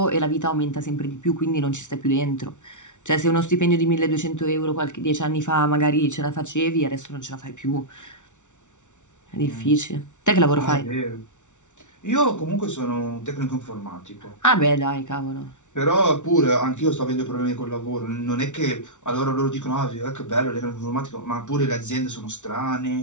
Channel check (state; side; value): late; right; 0.85 ms